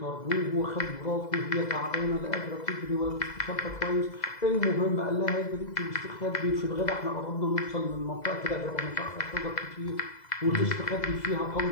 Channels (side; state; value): right; late; 2.0 ms